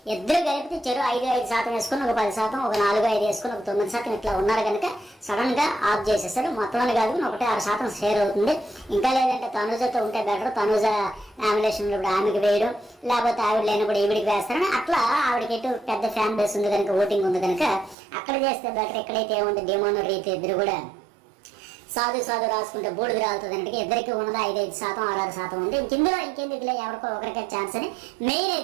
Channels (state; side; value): drops out; left; at 17.9 s